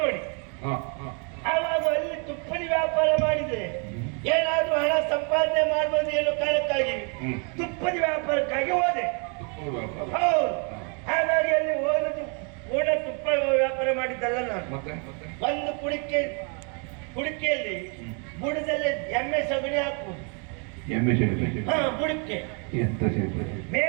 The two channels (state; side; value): quieter; left; 37.4 dB